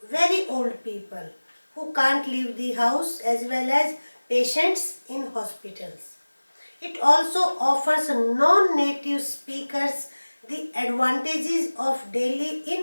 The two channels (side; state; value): both; inverted; correlation -1.00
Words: very old people who can't leave the house as well as patients in hospitals. It also offers non-native speakers the advantages of daily